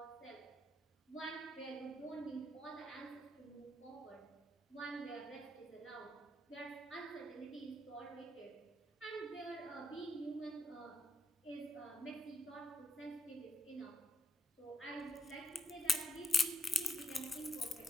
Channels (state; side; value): normal; both; correlation 0.73